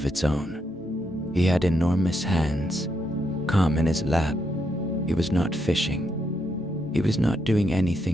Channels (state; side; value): normal; both; correlation 0.80